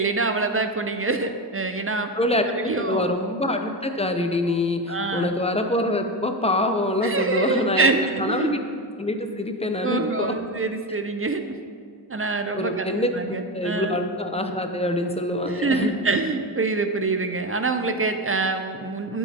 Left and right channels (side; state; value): both; normal; correlation 0.18